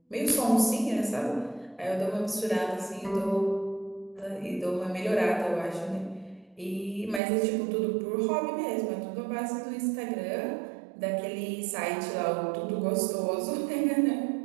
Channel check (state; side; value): drops out; left; at 7.2 s